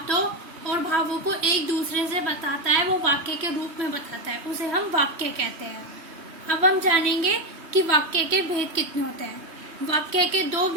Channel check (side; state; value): left; late; 3.2 ms